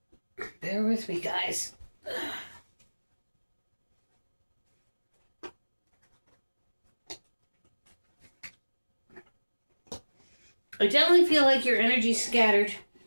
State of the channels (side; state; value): both; inverted; correlation -1.00